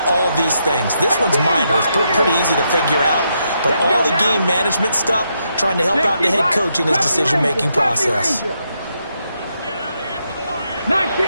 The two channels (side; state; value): both; inverted; correlation -0.80